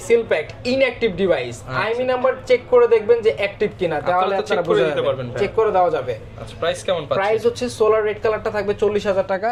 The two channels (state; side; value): identical; both; correlation 1.00